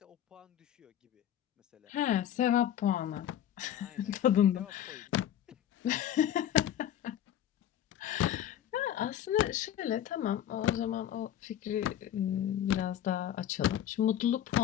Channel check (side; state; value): right; quieter; 10.9 dB